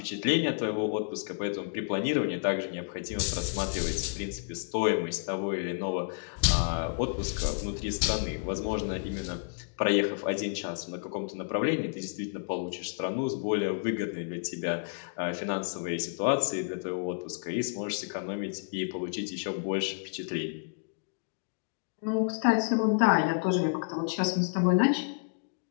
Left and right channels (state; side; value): silent; right; digital silence